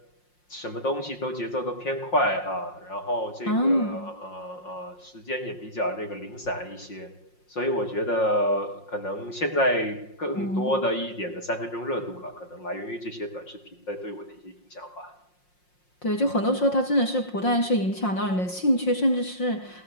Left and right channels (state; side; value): late; right; 5.6 ms